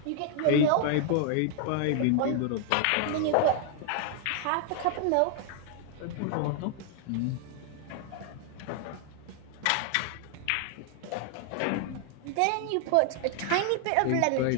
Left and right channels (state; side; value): different; both; correlation 0.00